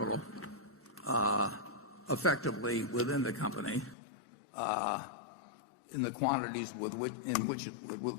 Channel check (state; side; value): drops out; right; at 4.0 s